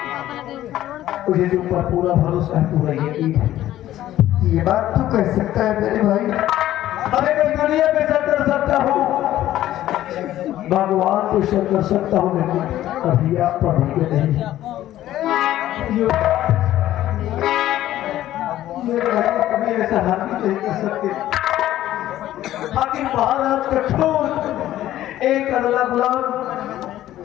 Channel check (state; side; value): quieter; right; 13.5 dB